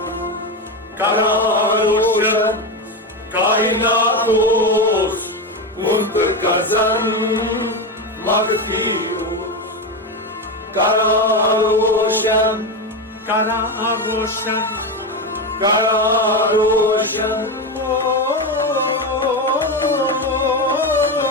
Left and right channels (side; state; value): both; normal; correlation 0.15